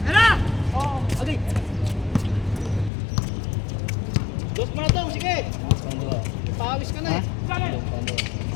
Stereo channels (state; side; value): drops out; right; at 2.9 s